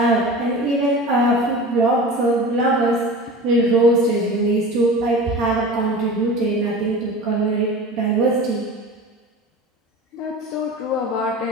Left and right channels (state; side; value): normal; both; correlation 0.35